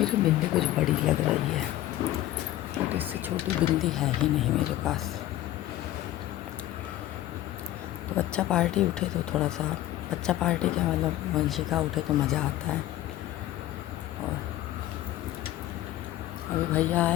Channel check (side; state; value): right; quieter; 14.3 dB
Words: बिंदी कुछ बड़ी लग रही है, बट इससे छोटी बिंदी है ही नहीं मेरे पास। तो बच्चा पार्टी उठे तो थोड़ा सा, बच्चा पार्टी क्या मतलब वंशिका उठे तो मज़ा आता है। और अभी भैया